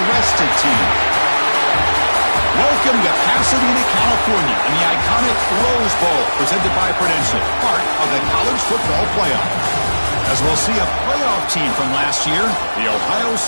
team? Welcome to Pasadena, California, and the iconic Rose Bowl, presented by Prudential, part of the college football playoff. As we'll see a playoff team from last year, the Ohio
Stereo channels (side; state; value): both; inverted; correlation -1.00